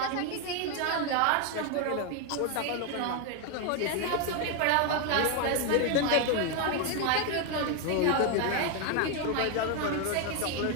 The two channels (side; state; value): both; different; correlation 0.01